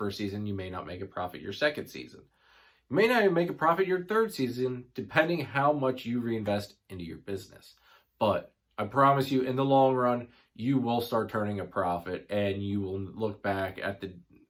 season. You may not make a profit your second season. You may not even make a profit your third season, depending how much you reinvest into your business. But I promise you, in the long run, you will start turning a profit, and you will look back at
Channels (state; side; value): identical; both; correlation 1.00